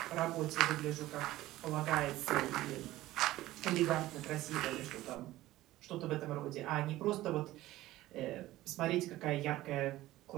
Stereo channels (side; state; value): left; quieter; 16.3 dB